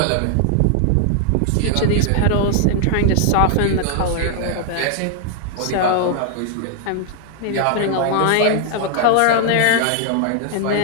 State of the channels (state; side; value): different; both; correlation 0.00